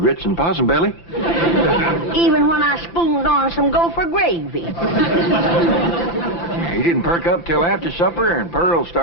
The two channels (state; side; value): late; right; 5.9 ms